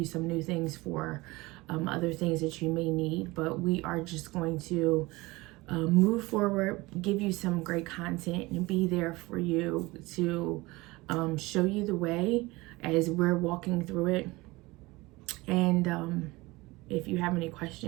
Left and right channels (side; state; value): left; quieter; 21.8 dB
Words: some new things for other things that you may need. But we are just going to move forward, give you some great content, and be there for you to show you the way as we're walking through it. And if you have any